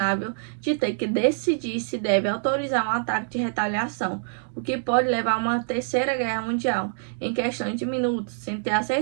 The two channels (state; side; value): silent; left; digital silence